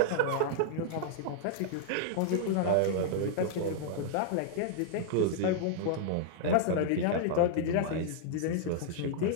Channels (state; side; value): different; both; correlation -0.01